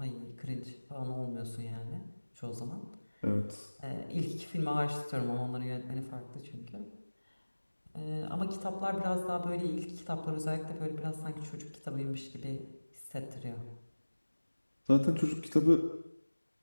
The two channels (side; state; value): both; inverted; correlation -1.00